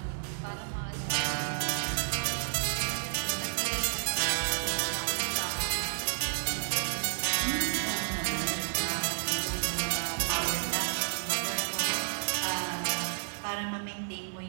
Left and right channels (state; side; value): silent; left; 57 dB below the other